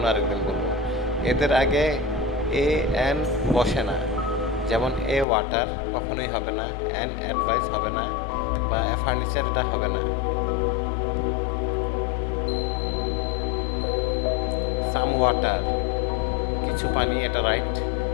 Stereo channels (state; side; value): drops out; right; at 5.2 s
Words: আরেকদিন বলবো। এদের আগে এ এন বসে না, যেমন এ ওয়াটার কখনোই হবে না, এন অ্যাডভাইস হবে না, বা ফার্নিচার এটা হবে না। সাম ওয়াটার, কিছু পানি, এটা রাইট।